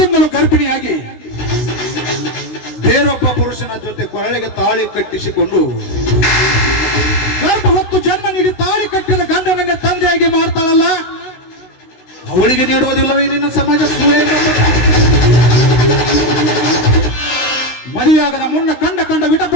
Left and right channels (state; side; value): late; right; 16 ms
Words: ಗರ್ಭಿಣಿಯಾಗಿ ಬೇರೊಬ್ಬ ಪುರುಷನ ಜೊತೆ ಕೊರಳಿಗೆ ತಾಳಿ ಕಟ್ಟಿಸಿಕೊಂಡು ಗರ್ಭ ಹೊತ್ತು ಜನ್ಮ ನೀಡಿ ತಾಳಿ ಕಟ್ಟಿದ ಗಂಡನನ್ನ ತಂದೆಯಾಗಿ ಮಾಡ್ತಾಳಲ್ಲ, ಅವಳಿಗೆ ನೀಡುವುದಿಲ್ಲವೇ ನಿನ್ನ ಸಮಾಜ ಸೂಳೆ ಎಂಬ ಪಟ್ಟ? ಮದುವೆಯಾಗದ ಮುನ್ನ ಕಂಡ ವಿಟ